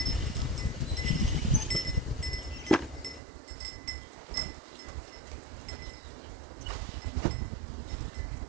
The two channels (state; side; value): drops out; left; at 3.2 s